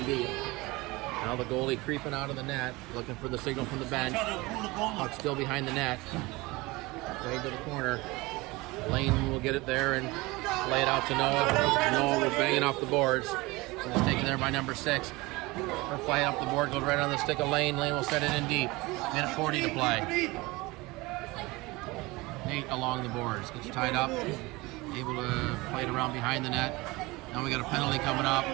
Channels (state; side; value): quieter; left; 22.4 dB